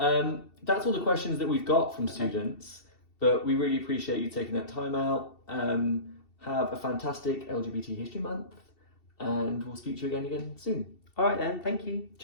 all the questions that we've got from students, but we really appreciate you taking that time out. Have a fantastic LGBT History Month, and we'll speak to you again soon. All right then, thank you.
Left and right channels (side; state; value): right; late; 2.7 ms